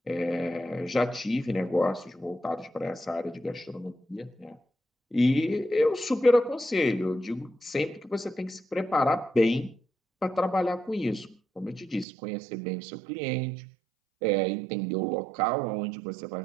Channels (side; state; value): left; drops out; at 12.1 s